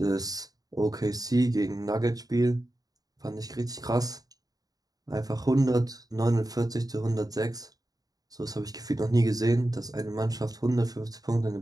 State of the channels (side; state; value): left; late; 0.18 ms